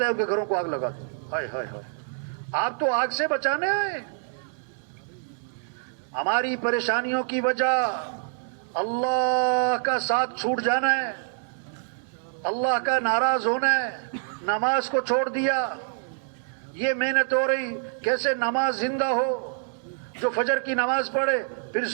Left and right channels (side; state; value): left; silent; digital silence